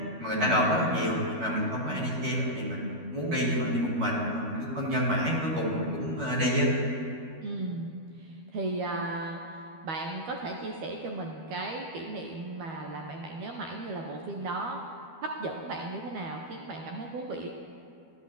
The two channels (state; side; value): late; left; 12 ms